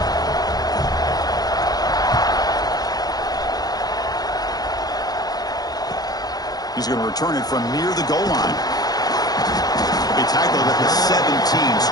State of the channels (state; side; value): late; right; 0.19 ms